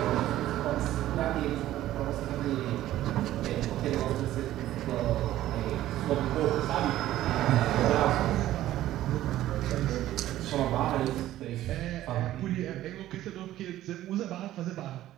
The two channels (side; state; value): left; quieter; 14.0 dB